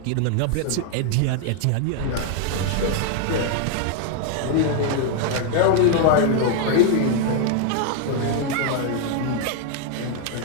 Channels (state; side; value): different; both; correlation 0.00